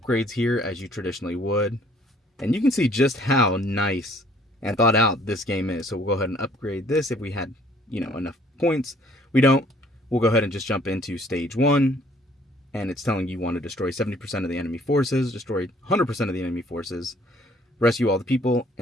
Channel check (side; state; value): both; normal; correlation 0.60